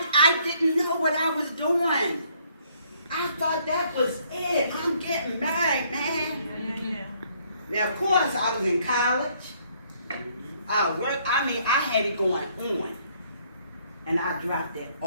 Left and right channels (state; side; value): inverted; both; correlation -0.66